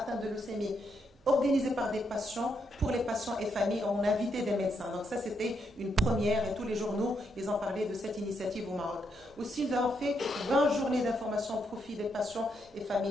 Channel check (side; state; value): both; normal; correlation 0.78